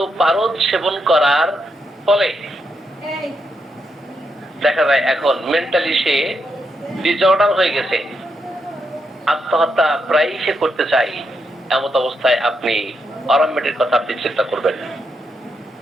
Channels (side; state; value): both; normal; correlation 0.81